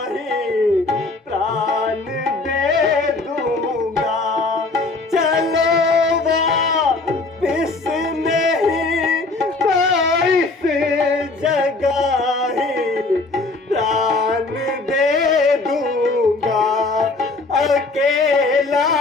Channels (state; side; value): quieter; right; 3.5 dB